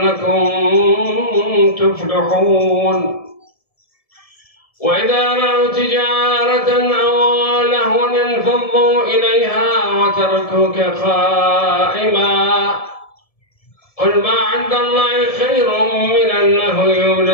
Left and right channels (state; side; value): late; right; 1.7 ms